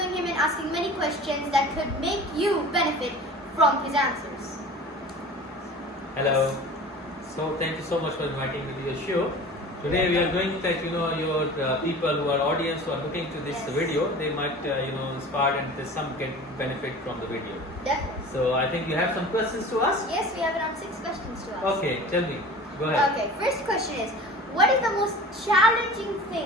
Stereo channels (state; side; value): normal; both; correlation 0.39